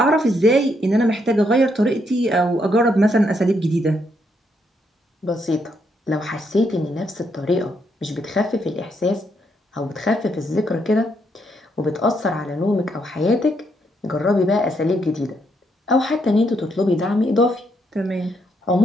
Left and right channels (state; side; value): normal; both; correlation 0.76